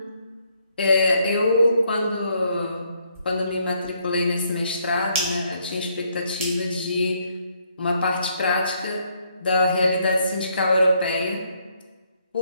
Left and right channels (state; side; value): inverted; both; correlation -0.72